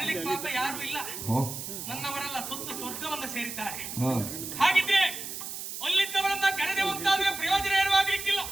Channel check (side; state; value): right; noise; hiss, 7 dB below the sound